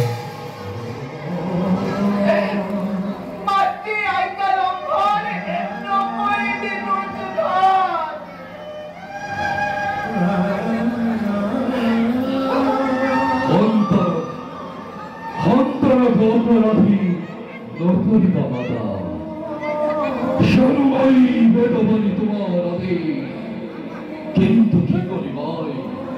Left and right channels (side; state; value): both; identical; correlation 1.00